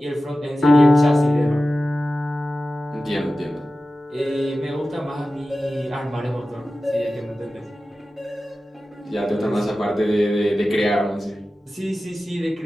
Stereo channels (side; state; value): both; normal; correlation 0.95